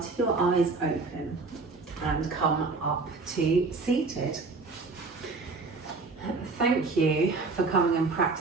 your eyes open and come up to seated. Thank you for coming and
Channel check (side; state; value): left; quieter; 3.9 dB